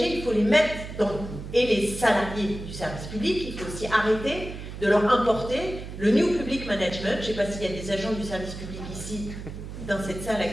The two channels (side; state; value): right; noise; hum, 10 dB below the sound